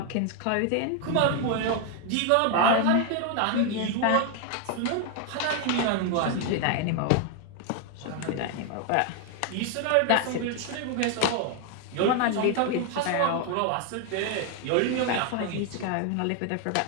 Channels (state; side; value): different; both; correlation 0.01